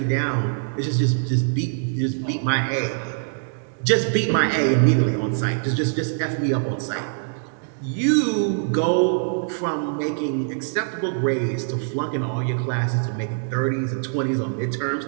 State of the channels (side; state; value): left; silent; digital silence